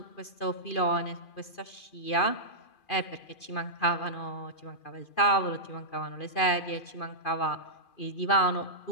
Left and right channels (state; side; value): late; right; 2.4 ms